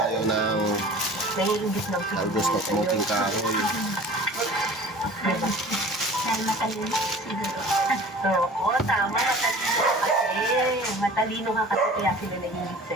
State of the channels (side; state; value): both; normal; correlation 0.43